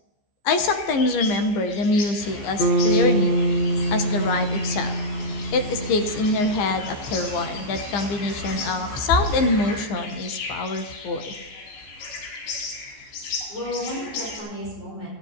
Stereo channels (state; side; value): late; right; 14 ms